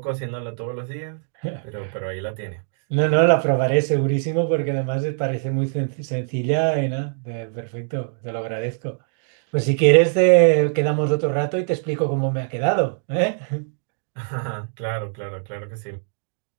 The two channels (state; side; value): silent; left; digital silence